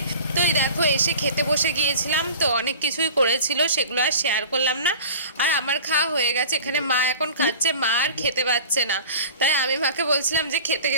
তো এই দেখো এসে খেতে বসে গিয়েছিলাম। তো অনেক কিছুই করেছিল, সেগুলো আর শেয়ার করলাম না। আর আমার খাওয়া হয়ে গেছে, এখানে মা এখন খাচ্ছে, মা আর খেতে পাচ্ছে না। তাই আমি মাকে বলছিলাম যে খেতে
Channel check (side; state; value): both; inverted; correlation -0.40